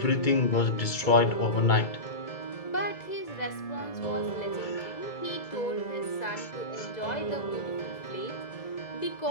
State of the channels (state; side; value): late; right; 2.0 ms